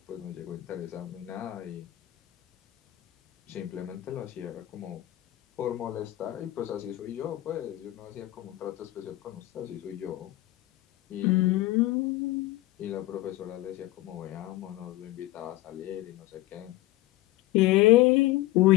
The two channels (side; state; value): right; quieter; 16.8 dB